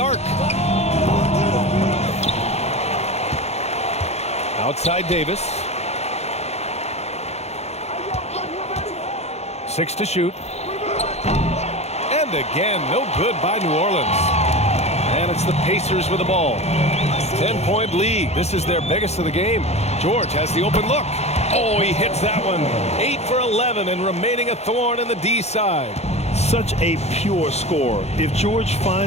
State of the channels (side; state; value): right; late; 0.31 ms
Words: Outside Davis. 6 to shoot. And again, no good by New Orleans. And it's the Pacers with the ball. 10-point lead. This is their biggest of the game. George has the open look. Oh, he hits that one. 8 for 11 and remaining a thorn in the D side. Such a pure score. If George